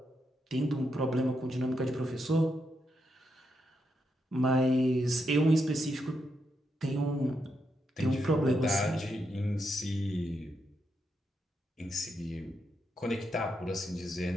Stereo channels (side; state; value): both; normal; correlation 0.82